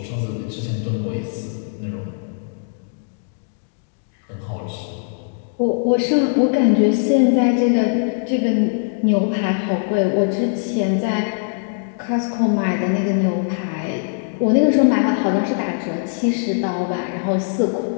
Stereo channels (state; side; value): silent; right; digital silence